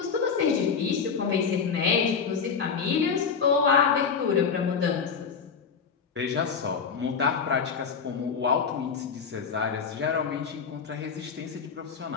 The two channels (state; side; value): quieter; right; 6.0 dB